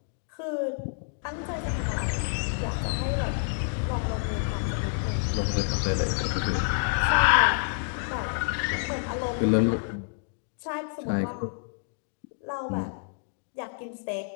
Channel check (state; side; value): silent; right; digital silence